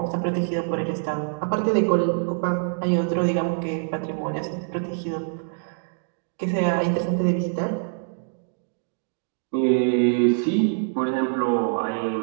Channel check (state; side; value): silent; left; digital silence